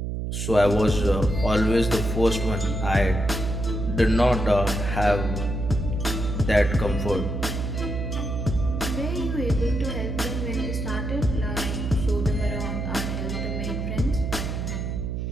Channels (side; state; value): right; noise; hum, 3 dB below the sound